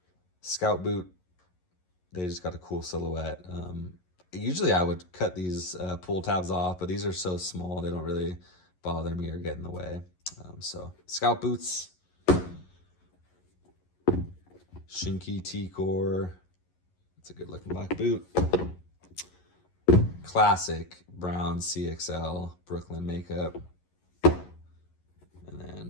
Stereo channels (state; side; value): late; right; 11 ms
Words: Scout boot. They just got a cool silhouette. Usually I would cut these pull tabs off, but these are so small they don't really bother me or get in the way. So Scout boots, Shinky T-Core. It's a good looking black boot. Classic brown CXL Brooklyn makeup. And